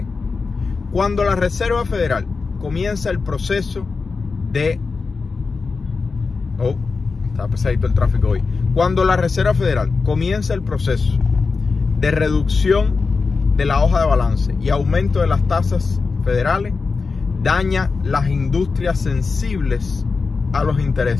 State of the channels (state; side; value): quieter; right; 4.5 dB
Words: Cuando la Reserva Federal comienza el proceso de... está pesadito el tráfico hoy. Cuando la Reserva Federal comienza el proceso de reducción de la hoja de balance y aumento de las tasas federales, daña las industrias sensibles a los